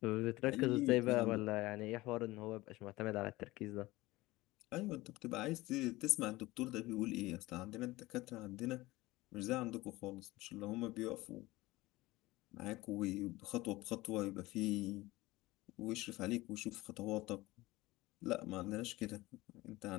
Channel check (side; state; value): right; quieter; 19.5 dB